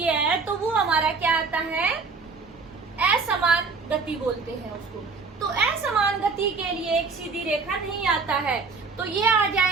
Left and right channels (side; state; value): left; quieter; 4.6 dB